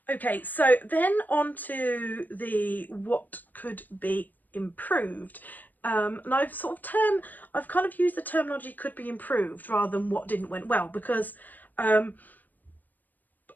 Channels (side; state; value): right; late; 0.084 ms